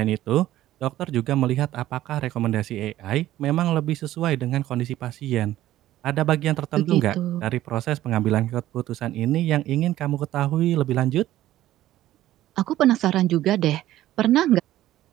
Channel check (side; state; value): left; quieter; 14.2 dB